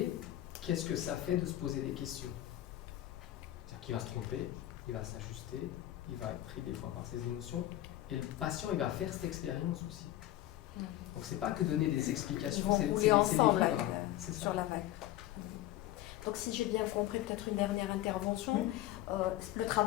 qu'est-ce que ça fait de se poser des questions. C'est-à-dire qu'il va se tromper, il va s'ajuster, il va être pris des fois par ses émotions, et le patient, il va faire cette expérience aussi. Donc c'est pas que donner des explications, c'est les vivre. C'est ça. Sur la vague. Donc si j'ai bien compris, peut-être une dernière intervention, le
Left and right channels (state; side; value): quieter; right; 14.2 dB